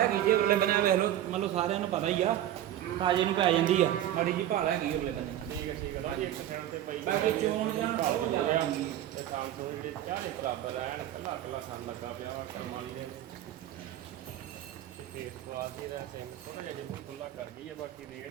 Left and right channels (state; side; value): quieter; left; 12.3 dB